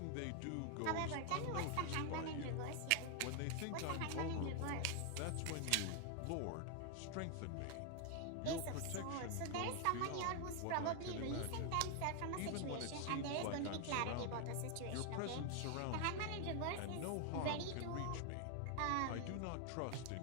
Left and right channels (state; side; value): different; both; correlation 0.00